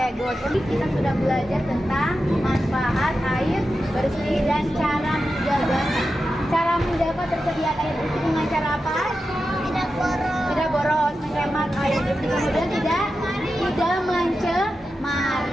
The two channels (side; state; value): both; normal; correlation 0.91